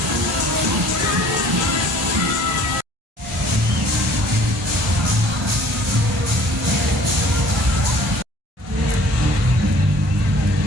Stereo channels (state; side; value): normal; both; correlation 0.53